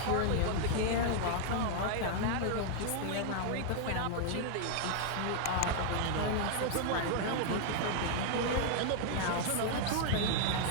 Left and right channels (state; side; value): different; both; correlation 0.00